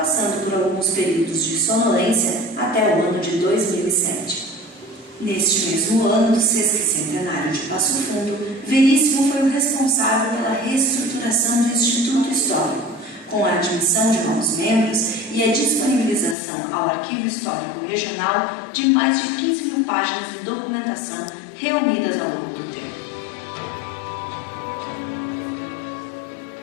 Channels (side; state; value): right; drops out; at 16.4 s